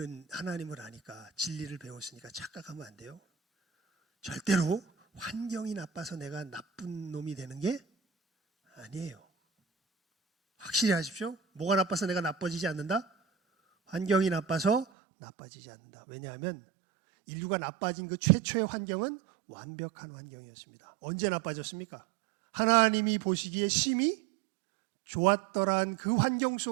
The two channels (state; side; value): drops out; left; at 14.9 s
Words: 하나님을 아니까, 진리를 배웠으니까 착각하면 안 돼요. 절대로 환경이 나빠서 내가 나쁜 놈이 되는 게 아니에요. 확실히 하십시오. 뭐가 나빠서 내가 나빠지지 않는다? 환경이 나빠서 나빠지지 않는다. 왜냐하면 인류가 나빠진 그 최초의 환경은 완벽한 환경이었습니다. 언제 나빠졌습니까? 하나님이 보시기에 심히 좋았더란 그 환경